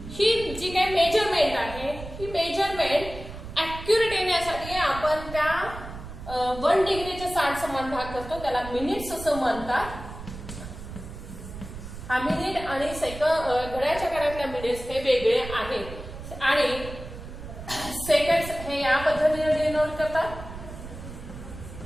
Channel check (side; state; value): right; noise; rumble, 12 dB below the sound